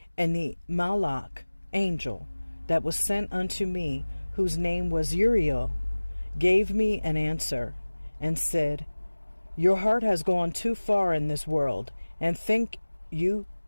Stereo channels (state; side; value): inverted; both; correlation -1.00